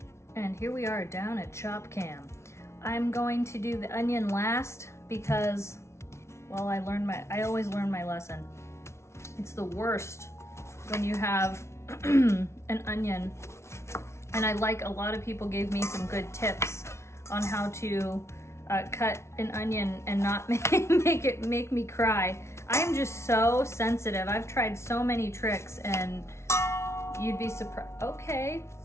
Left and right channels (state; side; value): late; right; 0.13 ms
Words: And here we are down at Chop Cam. I'm going to do the onion last because, well, I always learn my lesson. It's the worst when you have an onion. And a lot of people gave me some good tips on how to cut an onion and not make me cry. I am just so sensitive. I've tried so many tricks and you'd be surprised. Okay,